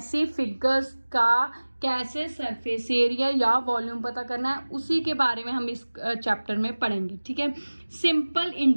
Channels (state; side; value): inverted; both; correlation -1.00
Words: फिगर्स का कैसे सरफेस एरिया या वॉल्यूम पता करना है उसी के बारे में हम इस चैप्टर में पढ़ेंगे। ठीक है, सिंपल